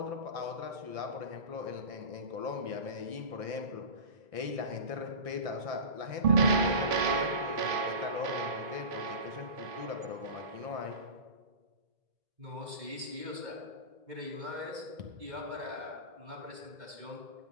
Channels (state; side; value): late; left; 2.5 ms